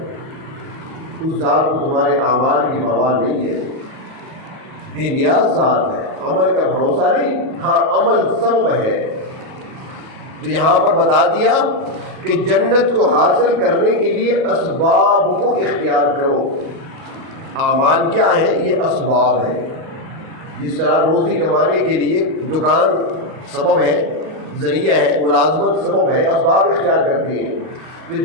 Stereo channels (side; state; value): left; late; 38 ms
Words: اس ذات کو تمہارے اعمال کی پرواہ نہیں ہے، بے نیاز ذات ہے، عمل کا بھروسہ نہیں، ہاں عمل سبب ہے۔ تو یہاں پر بتا دیا کہ جنت کو حاصل کرنے کے لیے اسباب کو اختیار کرو۔ اعمال کیا ہے؟ یہ اسباب ہے۔ جس طرح روزی کمانے کے لیے دکان سبب ہے، ذریعہ ہے، ملازمت سبب ہے، اسباب اختیار کرتی ہیں۔ تو